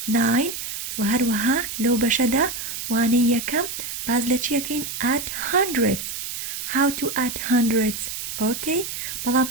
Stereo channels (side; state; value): right; noise; hiss, 6 dB below the sound